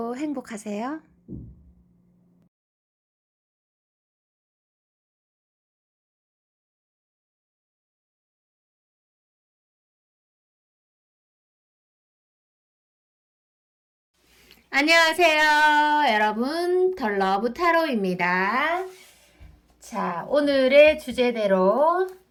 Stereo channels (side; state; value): both; identical; correlation 1.00